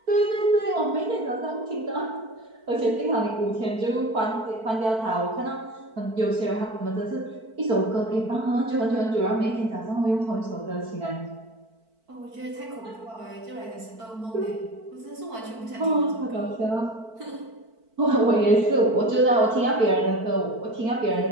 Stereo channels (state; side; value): late; left; 4.5 ms